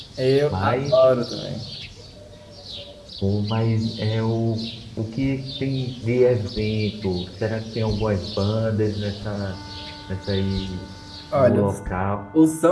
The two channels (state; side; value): identical; both; correlation 1.00